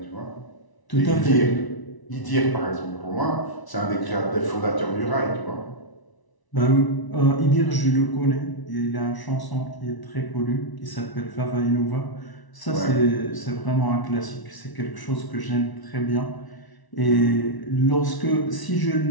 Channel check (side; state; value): right; late; 1.0 ms